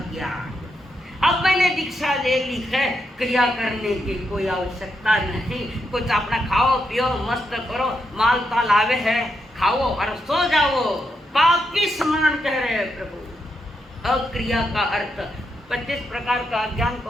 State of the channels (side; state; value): both; normal; correlation 0.82